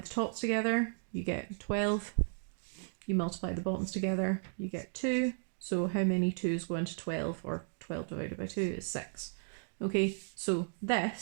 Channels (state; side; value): silent; left; 55 dB below the other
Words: tops together, you get 12. You multiply the bottoms together, you get 2. So how many 2's go into 12, or 12 divided by 2 is 6. Okay, so